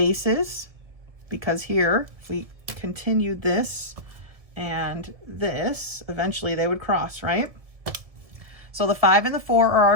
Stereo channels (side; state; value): left; late; 1.7 ms